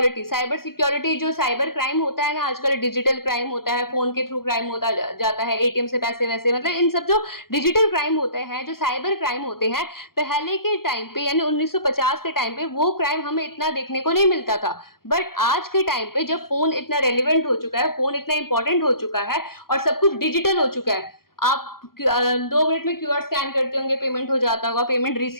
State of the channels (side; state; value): right; late; 0.93 ms